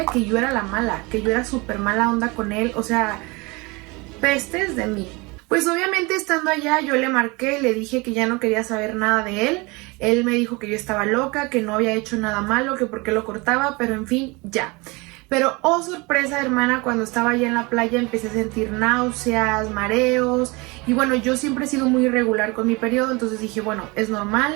que yo era la mala, que yo era súper mala onda con él, o sea, pestes de mí. Pues obviamente estando allá yo le marqué, le dije que ya no quería saber nada de él. Él me dijo que yo estaba loca, que no había hecho nada malo, que por qué lo cortaba, pero en fin, ya. Pero oh sorpresa, hermana, cuando estaba allá en la playa empecé a sentir náuseas, mareos y bueno, yo siempre he sido muy irregular con mi periodo, entonces dije, bueno, es normal,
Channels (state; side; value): quieter; left; 26.0 dB